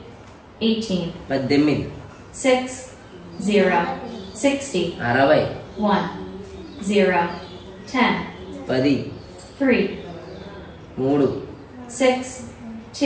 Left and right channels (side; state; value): both; identical; correlation 1.00